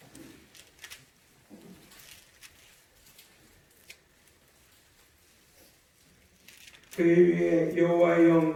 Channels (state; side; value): identical; both; correlation 1.00